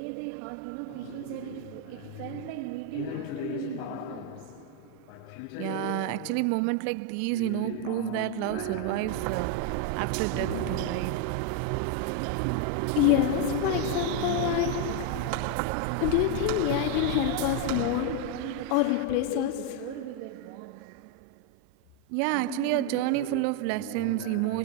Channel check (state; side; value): different; both; correlation 0.01